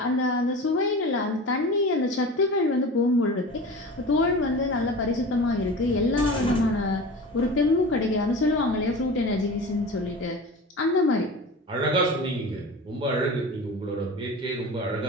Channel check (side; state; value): both; normal; correlation 0.34